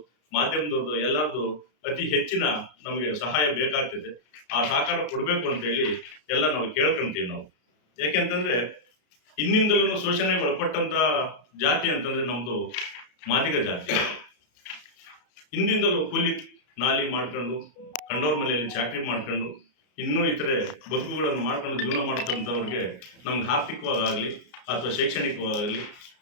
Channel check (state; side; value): late; right; 33 ms